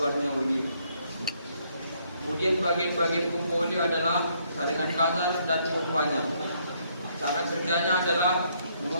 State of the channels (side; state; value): both; inverted; correlation -0.70